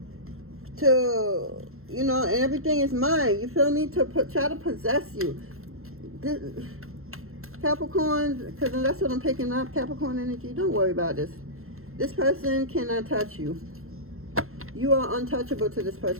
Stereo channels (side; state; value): left; late; 0.62 ms